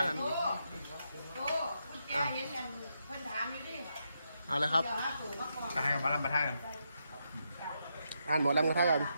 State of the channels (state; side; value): inverted; both; correlation -0.82